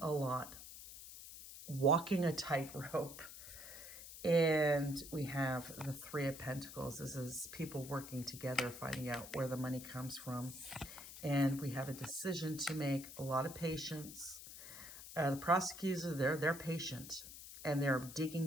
a lot, walking a tightrope. And we have the Three of Pentacles. This is people working together, finding out where the money comes from. And we have a decision to make, a lot of patience. The prosecutors are there, they're patient. And they're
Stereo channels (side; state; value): left; noise; hiss, 13 dB below the sound